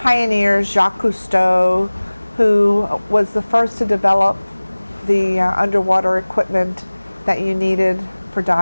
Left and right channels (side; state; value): both; inverted; correlation -1.00